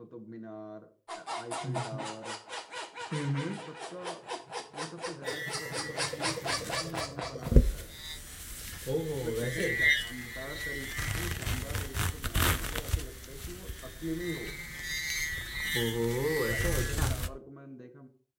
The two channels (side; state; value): both; identical; correlation 1.00